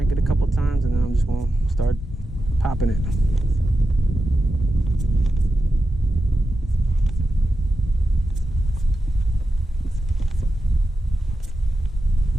it a couple times, and then I'm just gonna start popping it.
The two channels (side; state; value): both; normal; correlation 0.90